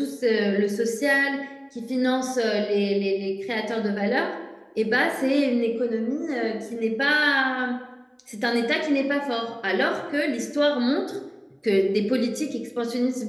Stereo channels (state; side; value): identical; both; correlation 1.00